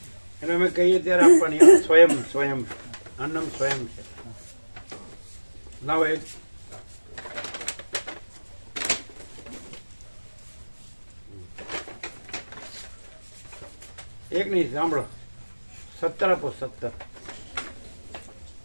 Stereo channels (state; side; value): inverted; both; correlation -1.00